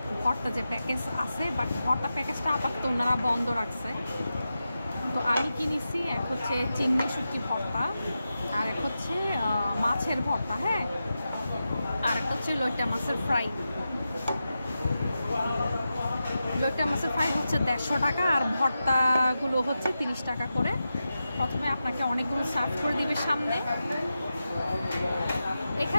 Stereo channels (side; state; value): both; inverted; correlation -0.91